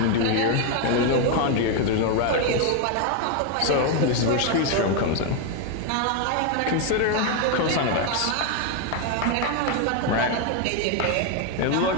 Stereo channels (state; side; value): different; both; correlation 0.01